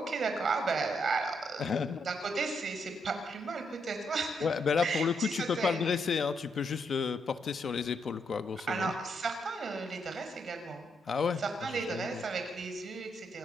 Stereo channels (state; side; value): normal; both; correlation 0.77